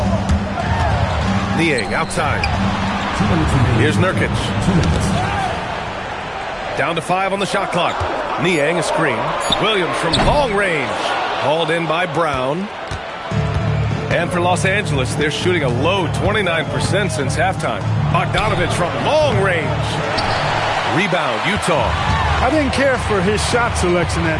Niang outside. Here's Nurkic. Down to 5 on the shot clock. Niang a screen. Williams from long range. Hauled in by Brown. And for Los Angeles, they're shooting a low 29% since halftime. Bogdanovic from long range. Rebound, Utah. I didn't care for his shot selection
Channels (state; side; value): identical; both; correlation 1.00